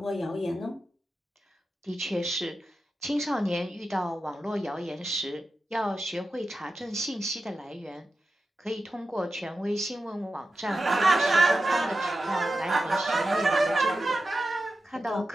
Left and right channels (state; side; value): normal; both; correlation 0.92